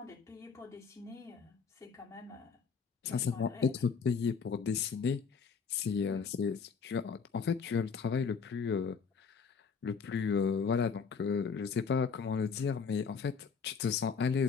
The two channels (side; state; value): right; quieter; 5.7 dB